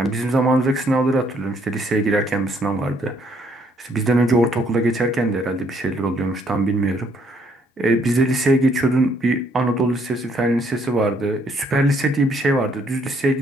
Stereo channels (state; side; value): normal; both; correlation 0.68